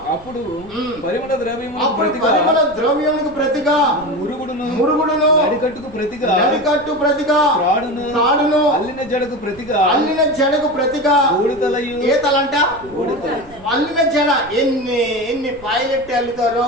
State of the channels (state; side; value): noise; right; rumble, 23 dB below the sound